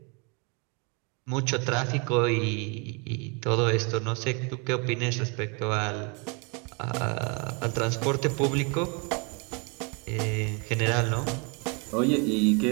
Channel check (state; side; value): quieter; left; 32.9 dB